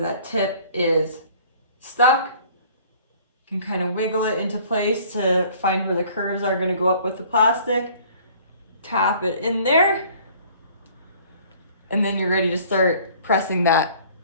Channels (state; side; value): inverted; both; correlation -0.53